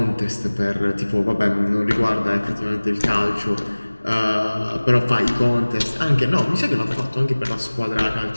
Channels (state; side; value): inverted; both; correlation -1.00